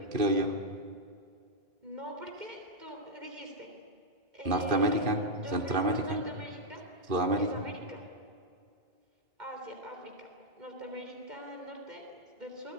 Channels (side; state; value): left; late; 2.4 ms